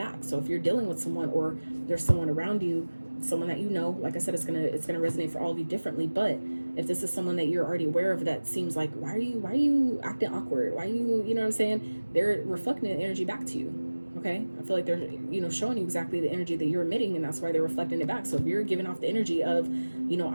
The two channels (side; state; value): both; inverted; correlation -1.00